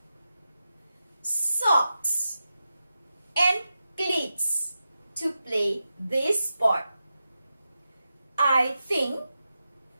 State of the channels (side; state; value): both; inverted; correlation -0.90